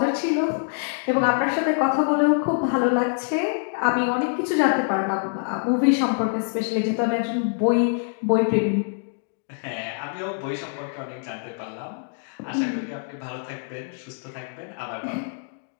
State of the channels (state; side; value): silent; right; 61 dB below the other